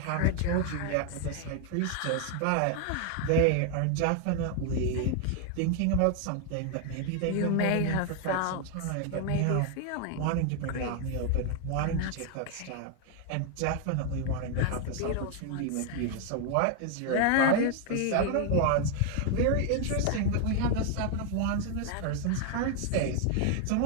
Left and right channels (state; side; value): different; both; correlation 0.00